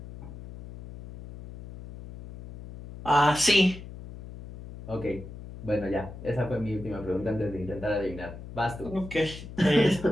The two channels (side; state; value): left; noise; hum, 13 dB below the sound